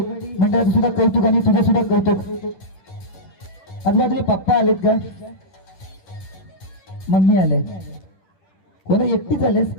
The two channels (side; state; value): right; late; 10 ms